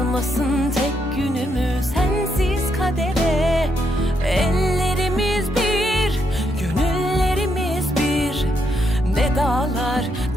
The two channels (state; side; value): normal; both; correlation 0.78